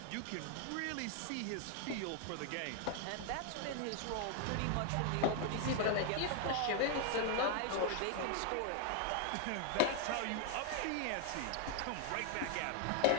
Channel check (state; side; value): different; both; correlation 0.00